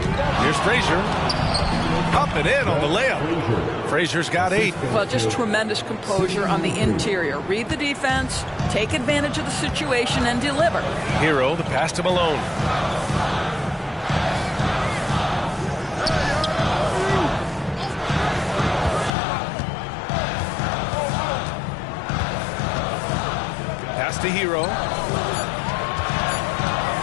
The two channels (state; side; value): drops out; right; at 19.1 s